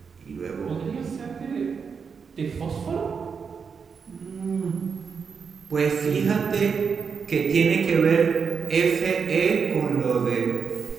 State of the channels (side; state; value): left; quieter; 6.0 dB